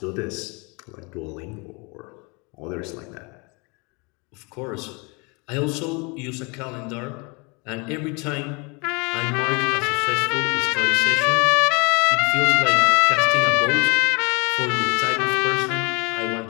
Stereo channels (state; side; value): quieter; right; 29.8 dB